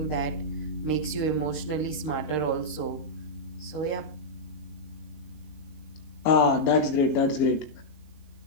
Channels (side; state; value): right; late; 19 ms